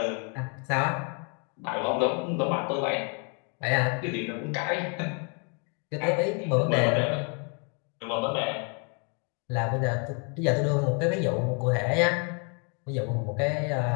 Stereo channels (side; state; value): right; quieter; 37.7 dB